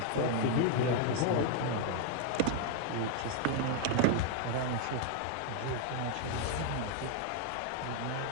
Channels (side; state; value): both; different; correlation 0.00